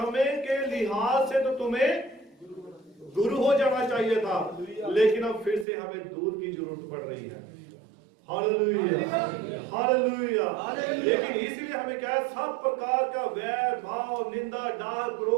के लिहाज से तो तुम्हें गुरु हो जाना चाहिए था, लेकिन अब फिर से हमें दूध की जरूरत पड़ रही है। Hallelujah, hallelujah. लेकिन इसलिए हमें क्या है, सब प्रकार का वैर भाव, निंदा, डाह,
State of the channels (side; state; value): left; drops out; at 5.7 s